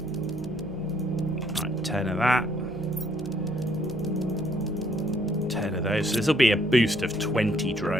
Right, 10 of that. 10 of those. So this will be a boost of 20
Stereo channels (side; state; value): both; normal; correlation 0.67